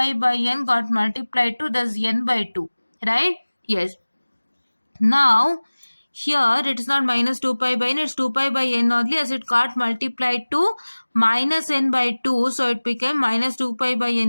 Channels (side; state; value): both; inverted; correlation -1.00